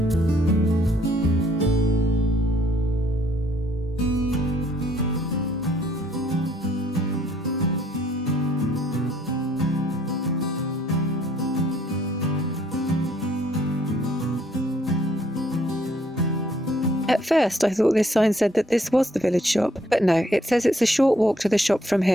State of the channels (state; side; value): normal; both; correlation 0.65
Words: At first I thought this sign said that this was the village shop, but no, it says it's a short walk to the shop from